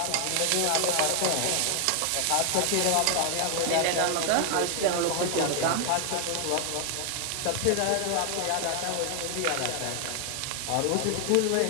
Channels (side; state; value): both; different; correlation 0.00